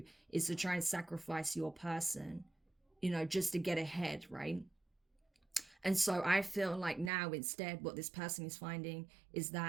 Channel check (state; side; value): drops out; left; at 7.1 s